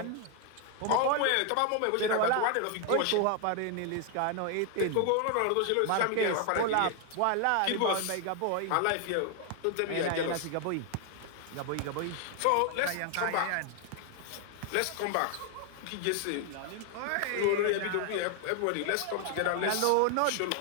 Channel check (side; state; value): both; different; correlation 0.00